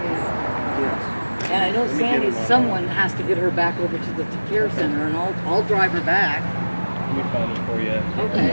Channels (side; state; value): both; inverted; correlation -1.00